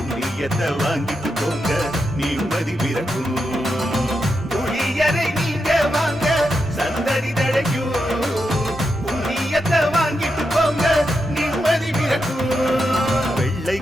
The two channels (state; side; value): normal; both; correlation 0.86